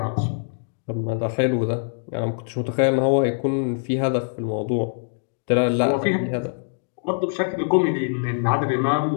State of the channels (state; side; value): silent; right; digital silence